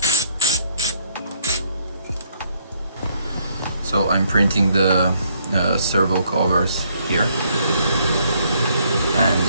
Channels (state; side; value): inverted; both; correlation -0.67